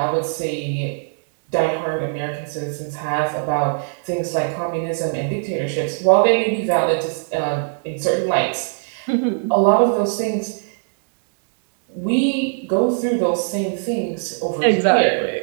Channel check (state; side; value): silent; left; digital silence